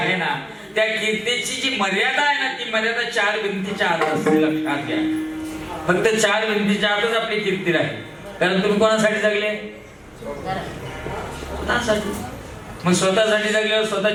ना त्या कीर्तीची जी मर्यादा आहे ना ती मर्यादा 4 भिंतीच्या आत असते लक्षात घ्या फक्त 4 भिंतीच्या आतच आपली कीर्ती राहील कारण तुम्ही कोणासाठी जगले स्वतःसाठी मग स्वतःसाठी जगल्यावर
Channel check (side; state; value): both; identical; correlation 1.00